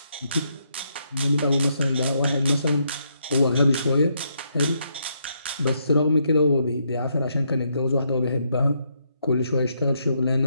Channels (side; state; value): both; inverted; correlation -0.76